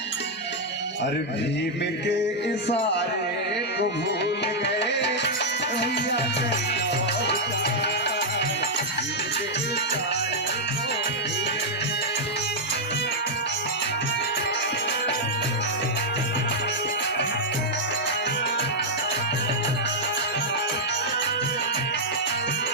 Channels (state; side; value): normal; both; correlation -0.04